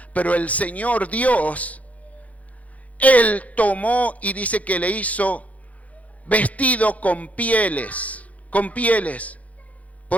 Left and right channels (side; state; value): right; late; 0.069 ms